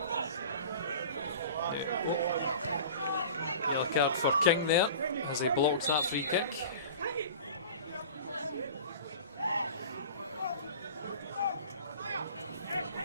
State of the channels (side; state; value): both; inverted; correlation -0.39